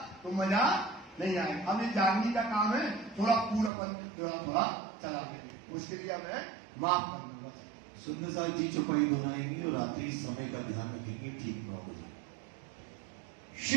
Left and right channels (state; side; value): drops out; left; at 3.7 s